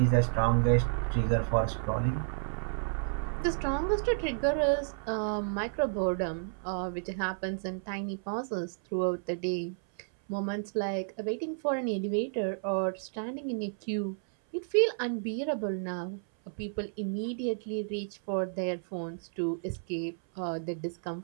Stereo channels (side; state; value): left; silent; 57 dB below the other